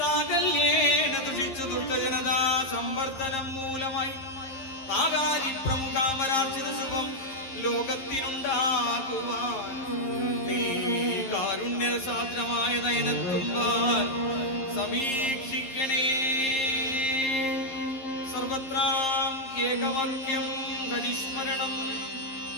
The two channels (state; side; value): late; right; 11 ms